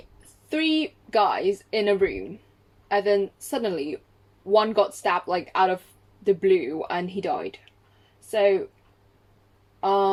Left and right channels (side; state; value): both; identical; correlation 1.00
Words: 3 guys in a room, and then suddenly one got stabbed like out of the blue and he died. So